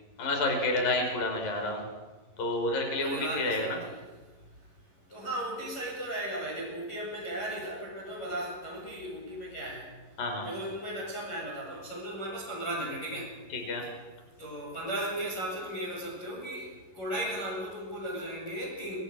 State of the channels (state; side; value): late; right; 11 ms